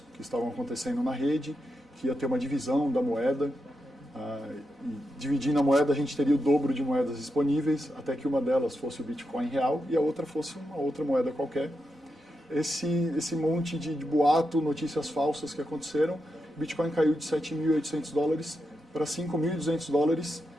que estavam acontecendo na rede, que ia ter uma divisão da moeda. E dividindo a moeda, a gente teria o dobro de moedas disponíveis, até que uma delas fosse o Bitcoin real e a outra fosse uma outra moeda qualquer. Esse monte de boato, notícias falsas que aconteceram, o Bitcoin caiu de $7.800 para $5.200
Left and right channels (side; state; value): both; normal; correlation 0.86